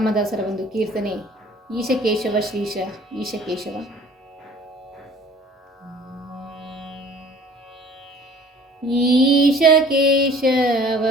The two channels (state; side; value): normal; both; correlation 0.51